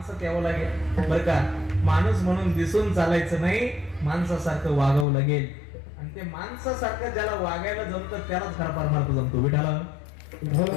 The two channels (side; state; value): right; drops out; at 5.1 s